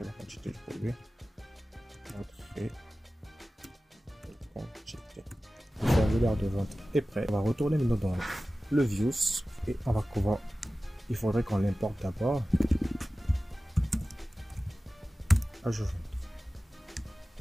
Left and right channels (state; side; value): normal; both; correlation 0.96